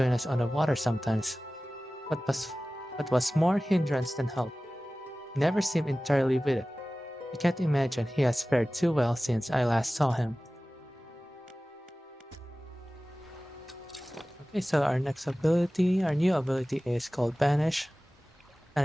us on the water sometimes. But was more hindrance than help. He never seemed entirely with it. I can't imagine he has fared too well since I last saw him. Okay, so our new ability is called Banish.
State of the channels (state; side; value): normal; both; correlation 0.97